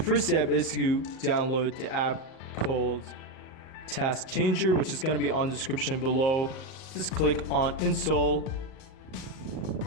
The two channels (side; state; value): right; late; 38 ms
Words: step is to download the app called Task Changer, which is gonna be on the description below. Just click on install,